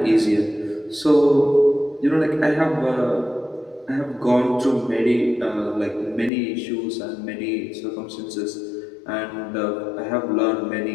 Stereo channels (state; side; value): drops out; right; at 6.3 s